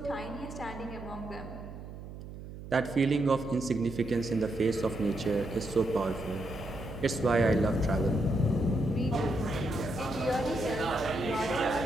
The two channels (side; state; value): right; noise; hum, 12 dB below the sound